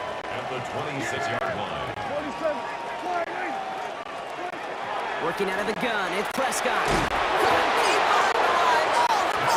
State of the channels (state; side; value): identical; both; correlation 1.00